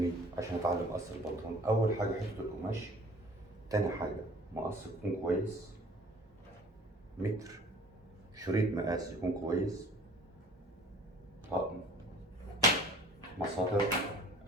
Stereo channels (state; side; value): normal; both; correlation 0.49